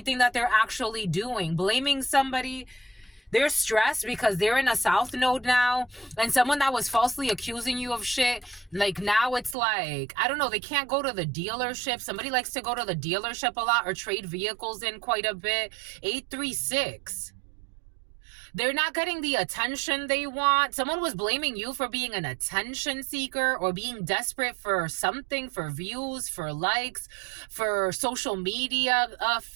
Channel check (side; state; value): left; drops out; at 9.6 s